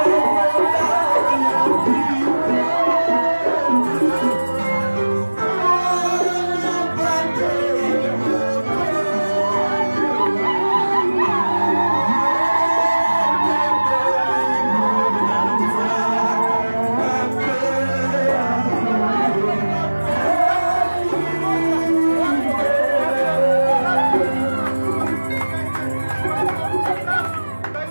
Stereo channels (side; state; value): both; inverted; correlation -1.00